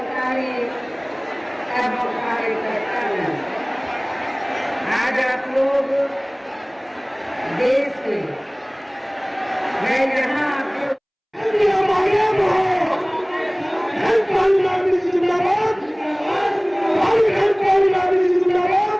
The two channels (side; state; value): both; identical; correlation 1.00